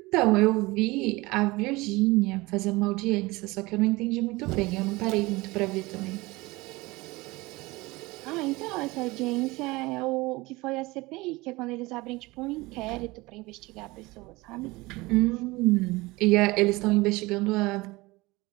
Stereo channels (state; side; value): quieter; left; 21.9 dB